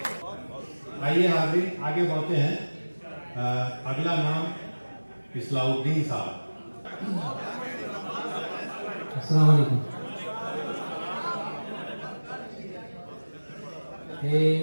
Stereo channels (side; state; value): both; inverted; correlation -1.00